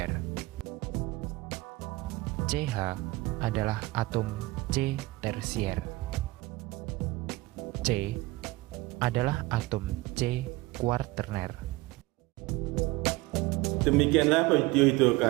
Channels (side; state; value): left; quieter; 20.8 dB